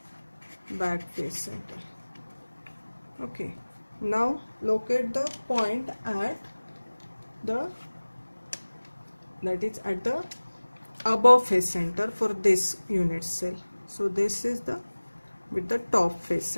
Back face center. Okay. Now locate the point at the, that is at the above face center for this unit cell. So this is the with the top face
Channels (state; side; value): inverted; both; correlation -1.00